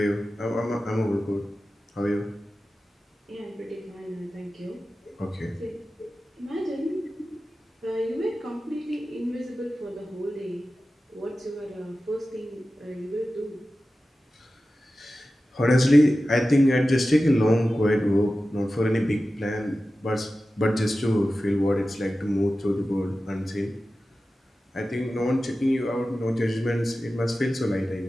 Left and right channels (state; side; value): normal; both; correlation 0.94